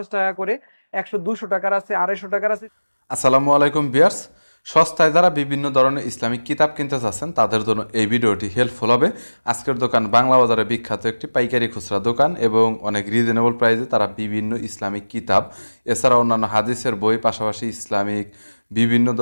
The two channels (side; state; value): both; inverted; correlation -1.00